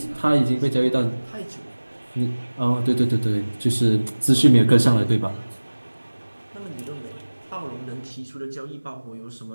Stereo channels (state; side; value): inverted; both; correlation -1.00